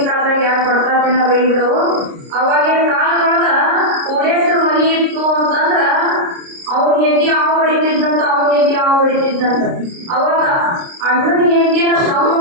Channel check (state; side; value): late; left; 29 ms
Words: ಕಾಲದಾಗ ಯಾರು ಬಡ್ತಾತಿನ ಬೈಬಿಡು, ಅವಾಗಿನ ಕಾಲದೊಳಗ ಕೋಡೇಶ್ವರ ಮನಿ ಇತ್ತು ಅಂತಂದ್ರ ಅವ್ನ ಹೆಂಡತಿ ಅವ ಹೊಡಿತಿದ್ದಂತ, ಅವನ ಹೆಂಡತಿ ಅವ ಹೊಡಿತಿದ್ದಂತ. ಅವಾಗ ಅಣ್ಣನ ಹೆಂಡತಿನ ತಮ್ಮ